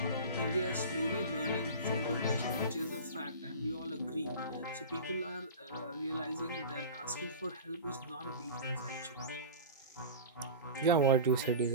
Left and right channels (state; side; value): inverted; both; correlation -0.33